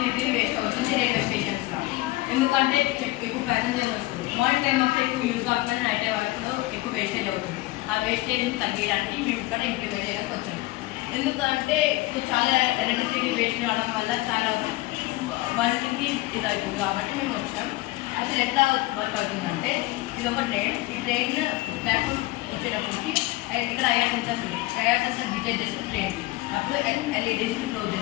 వేస్ట్ అవుతుంది రైల్వే స్టేషన్స్లో. ఎందుకంటే ఎక్కువ ప్యాసింజర్స్ వస్తారు. మార్నింగ్ టైం అప్పుడు ఎక్కువ యూజ్ కాకపోయినా నైట్ టైం అప్పుడు ఎక్కువ వేస్టేజ్ అవుతుంది. ఆ వేస్టేజ్ని తగ్గించడానికి మేము ఇక్కడ ఇంప్లిమెంట్ చేయడానికి వచ్చాము. ఎందుకంటే ఇప్పుడు చాలా ఎలక్ట్రిసిటీ వేస్ట్ కావడం వల్ల చాలా వర్క్కి ఇది అవుతుంది కాబట్టి మేము వచ్చాం. అసలు ఎట్లా వర్క్ అవుతుందంటే ఇది ఒక ట్రైన్. ఈ ట్రైన్ ప్లాట్ఫామ్ వచ్చేటప్పటికి ఇక్కడ ఐఆర్ సెన్సర్స్ ఉంది. ఐఆర్ సెన్సర్ డిటెక్ట్ చేస్తుంది ట్రైన్కి. అప్పుడు ఎల్ఈడీస్ని క్లోజ్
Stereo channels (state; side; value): quieter; right; 19.8 dB